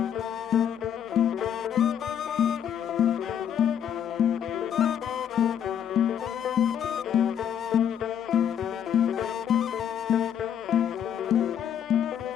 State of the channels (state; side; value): quieter; right; 9.1 dB